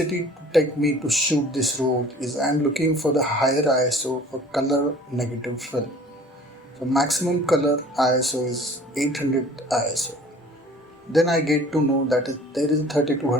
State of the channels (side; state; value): both; normal; correlation 0.49